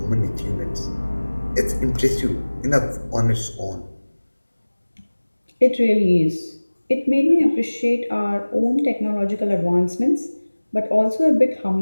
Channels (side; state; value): both; inverted; correlation -1.00